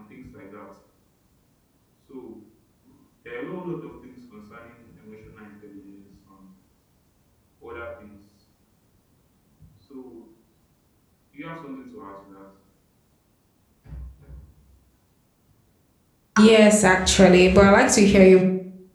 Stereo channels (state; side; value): identical; both; correlation 1.00